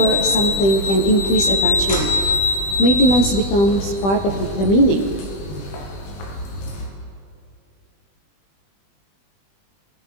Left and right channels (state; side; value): late; right; 20 ms